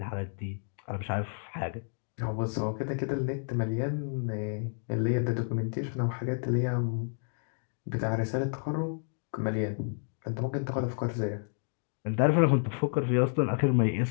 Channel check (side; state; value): right; silent; 55 dB below the other